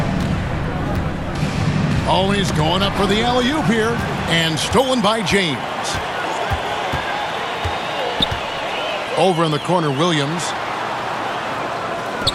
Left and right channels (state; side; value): identical; both; correlation 1.00